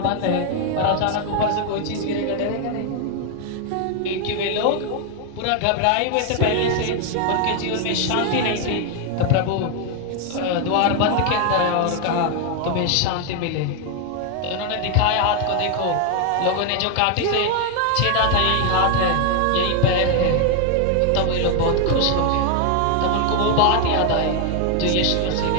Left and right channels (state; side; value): different; both; correlation 0.01